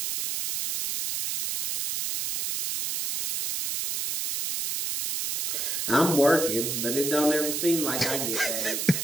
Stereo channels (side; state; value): right; noise; hiss, 2 dB below the sound